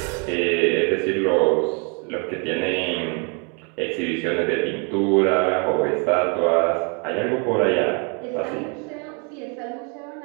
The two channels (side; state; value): left; quieter; 35.3 dB